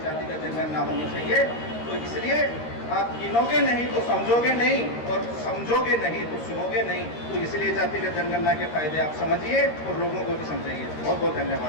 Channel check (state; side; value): late; right; 13 ms